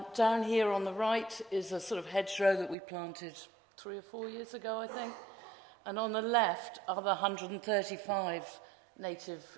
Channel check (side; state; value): left; drops out; at 2.8 s